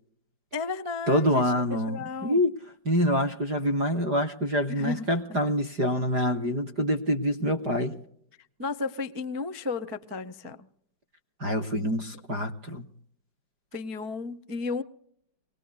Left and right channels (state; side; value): late; left; 5.0 ms